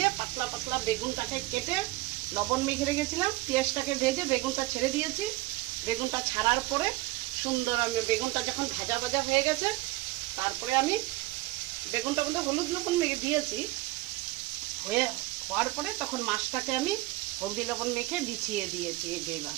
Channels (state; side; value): quieter; left; 19.4 dB